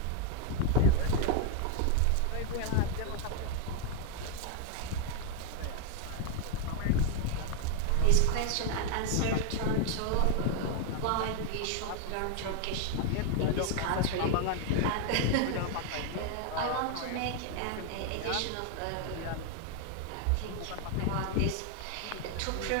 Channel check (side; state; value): both; different; correlation 0.00